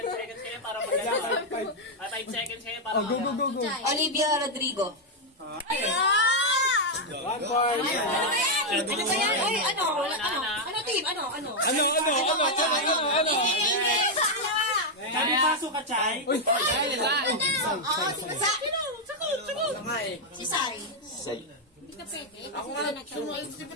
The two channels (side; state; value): both; normal; correlation 0.00